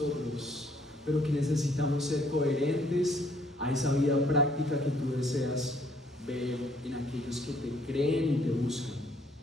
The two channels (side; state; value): both; normal; correlation 0.65